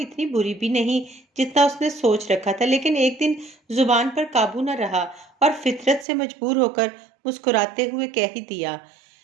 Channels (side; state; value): left; drops out; at 6.1 s